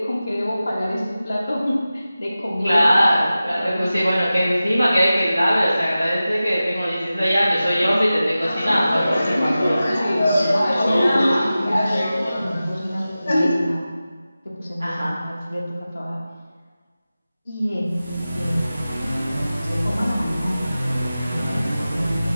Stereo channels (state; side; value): inverted; both; correlation -0.95